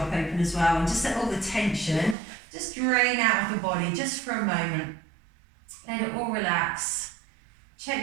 open as well. And just let all the tension just drain out of the body just for a moment. Let it all relax.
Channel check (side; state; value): left; drops out; at 2.1 s